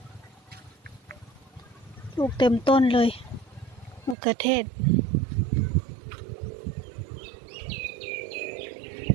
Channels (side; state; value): left; drops out; at 4.2 s